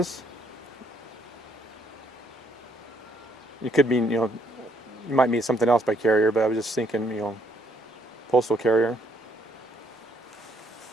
You could mean, you might mean something else by carrier, but I was just thinking, postal carrier.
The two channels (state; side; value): normal; both; correlation 0.69